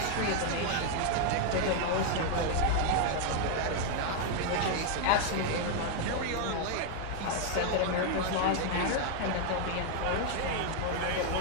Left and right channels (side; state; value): both; different; correlation 0.00